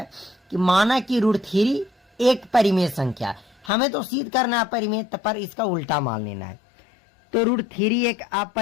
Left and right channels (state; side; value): drops out; right; at 3.7 s